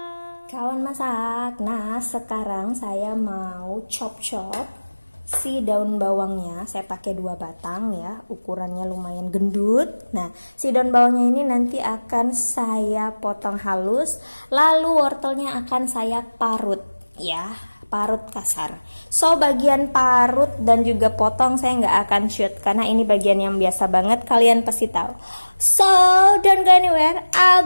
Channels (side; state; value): both; inverted; correlation -1.00